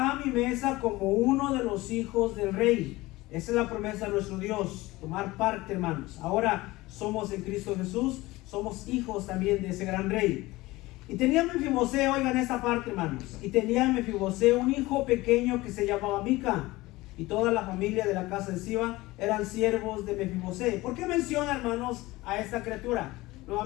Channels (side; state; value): right; quieter; 19.7 dB